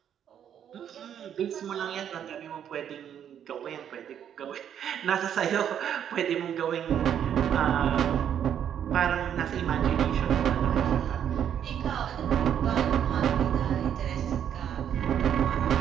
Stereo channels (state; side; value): quieter; left; 9.3 dB